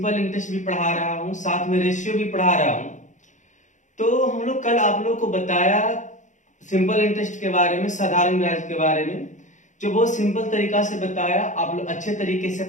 इंटरेस्ट भी पढ़ा रहा हूं, साथ में रेशियो भी पढ़ा रहा हूं। तो हम लोग कल आप लोग को बताया सिंपल इंटरेस्ट के बारे में, साधारण ब्याज के बारे में, जो बहुत सिंपल तरीका से बताया। आप लोग अच्छे तरीके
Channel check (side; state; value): right; late; 0.36 ms